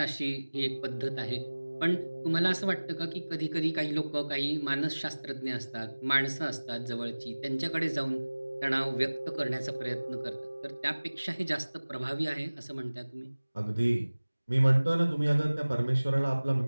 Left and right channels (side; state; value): both; inverted; correlation -1.00